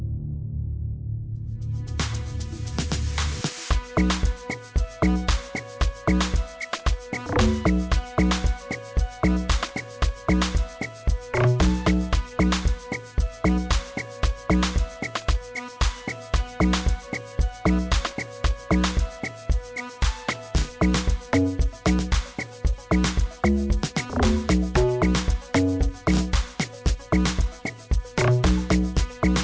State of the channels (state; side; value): identical; both; correlation 1.00